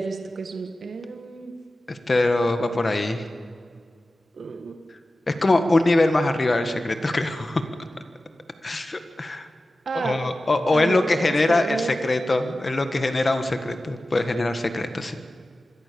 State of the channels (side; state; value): both; normal; correlation 0.95